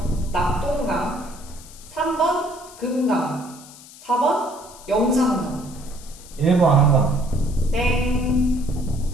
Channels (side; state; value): left; noise; hiss, 19 dB below the sound